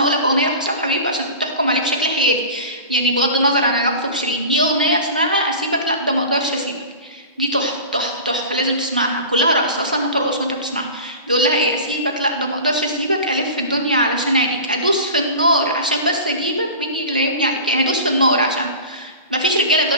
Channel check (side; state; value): both; inverted; correlation -0.35